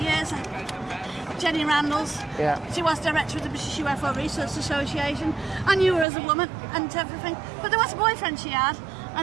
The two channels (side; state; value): left; drops out; at 6.1 s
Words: Jenny Randalls. Yeah. She was director of the British UFO Research Association. I knew her as a woman and everything. But there was a boyfriend she had,